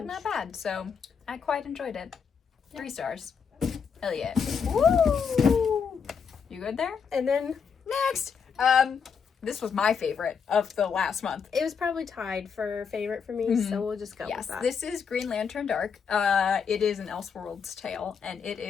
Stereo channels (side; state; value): right; quieter; 6.4 dB